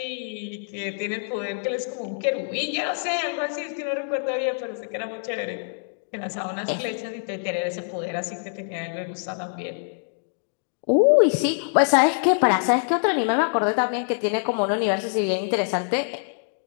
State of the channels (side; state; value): right; silent; digital silence